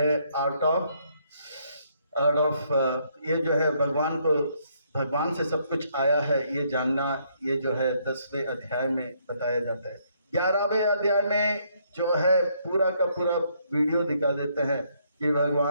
आर्ट ऑफ ये जो है भगवान को भगवान से सब कुछ आया है ये जानना, ये जो है 10वें अध्याय में बताया जाता है। 11वें अध्याय में जो है पूरा का पूरा वीडियो दिखा देते हैं कि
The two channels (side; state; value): both; inverted; correlation -0.71